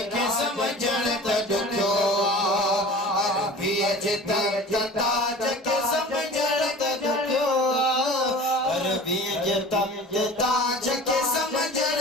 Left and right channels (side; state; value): both; normal; correlation 0.40